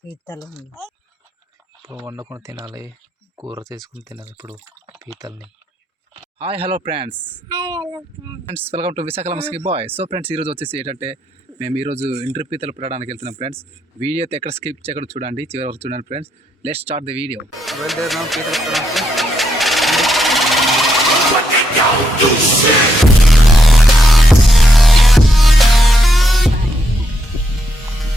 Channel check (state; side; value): normal; both; correlation 0.78